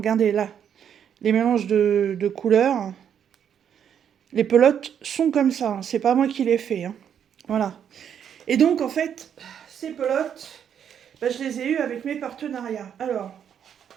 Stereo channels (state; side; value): quieter; left; 8.6 dB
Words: là. Les mélanges de couleurs. Les pelotes sont comme ça. Hein. C'est pas moi qui les fait. Hein. Voilà. Et donc, en fait, ces pelotes, je les ai eues avec mes partenariats. Alors,